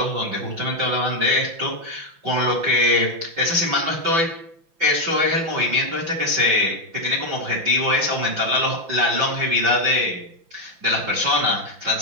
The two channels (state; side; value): late; left; 5.9 ms